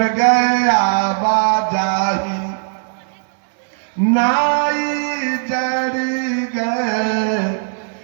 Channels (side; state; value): left; silent; 62 dB below the other